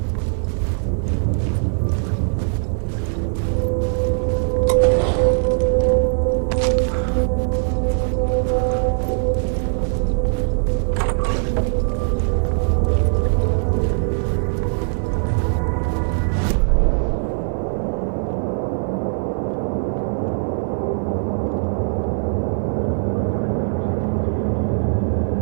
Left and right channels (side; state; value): left; silent; digital silence